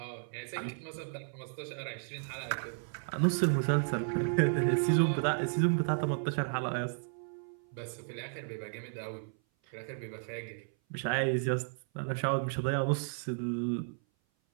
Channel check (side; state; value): left; silent; 55 dB below the other